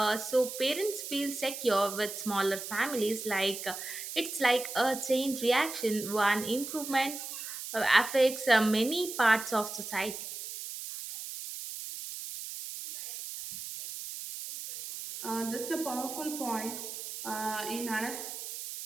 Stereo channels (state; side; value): noise; right; hiss, 8 dB below the sound